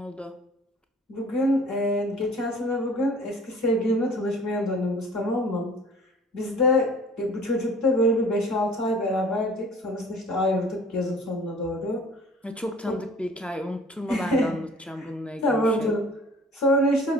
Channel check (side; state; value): both; normal; correlation 0.49